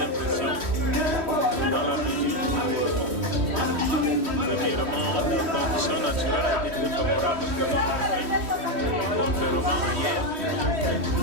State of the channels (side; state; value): left; late; 3.1 ms